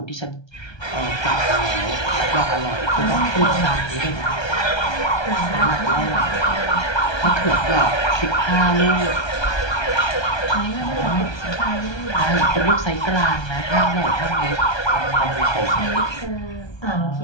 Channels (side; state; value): right; late; 1.3 ms